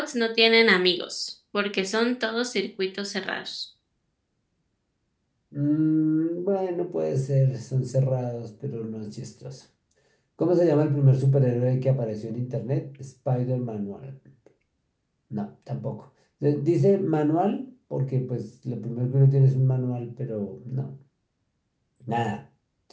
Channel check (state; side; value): identical; both; correlation 1.00